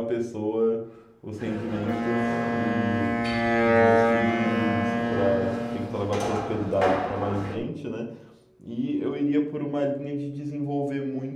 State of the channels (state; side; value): identical; both; correlation 1.00